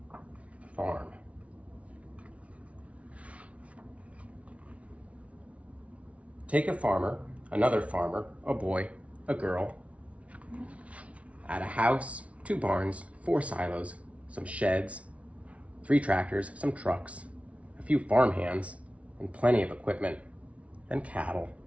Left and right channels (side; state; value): left; late; 0.064 ms